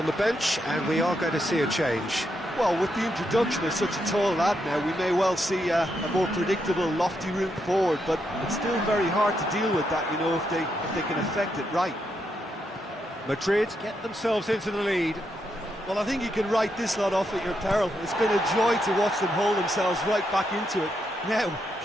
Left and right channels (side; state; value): both; normal; correlation 0.81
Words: the bench, and we are going to see a change. Well, with the introduction of such a tall lad now, we may well see a more predictable, lofty route forward, but it's still very hard to deal with that, you know, if they can affect it right. Madrid get themselves into the lead. Well, I think you can write this lot off at your peril. It's been a joy to watch them hold themselves right back into it. Now,